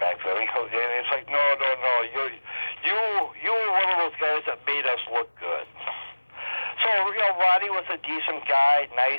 then. And he's like, no, you were one of those guys that made us look good. So, you know, Roddy was a decent guy,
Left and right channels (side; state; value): both; inverted; correlation -1.00